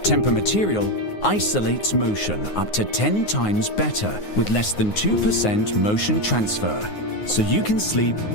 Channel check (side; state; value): right; late; 9.5 ms